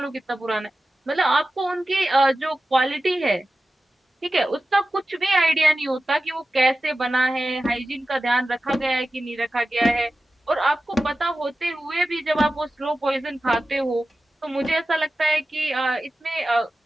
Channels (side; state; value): both; normal; correlation 0.94